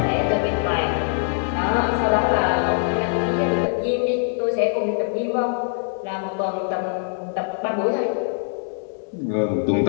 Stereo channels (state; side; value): silent; right; 64 dB below the other